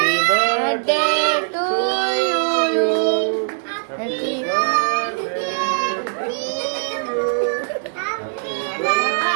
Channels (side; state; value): left; silent; 63 dB below the other